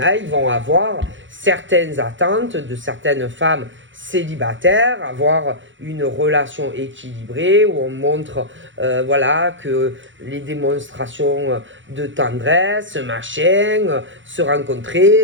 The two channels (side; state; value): left; late; 0.55 ms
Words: ils vont avoir certaines attentes de certaines femmes célibataires, avoir une relation équilibrée où on montre que les démonstrations de tendresse, machin, se